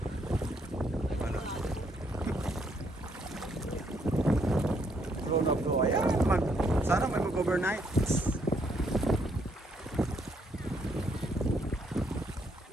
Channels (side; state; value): both; normal; correlation 0.72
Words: Ano? Flow na flow. Ayan, sana may mag-overnight.